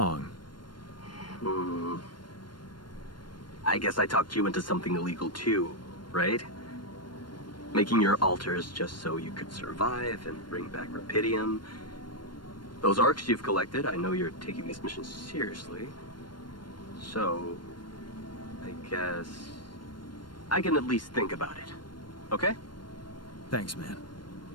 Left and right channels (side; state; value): right; late; 0.72 ms